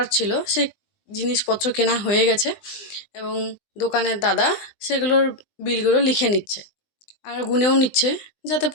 ছিল সেই জিনিসপত্র কেনা হয়ে গেছে এবং দোকানের দাদা সেগুলোর বিলগুলো লিখে নিচ্ছে আর গুনেও নিচ্ছে, যাতে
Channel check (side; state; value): right; late; 20 ms